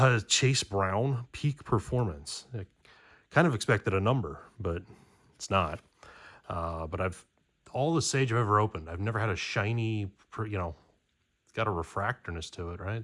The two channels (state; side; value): identical; both; correlation 1.00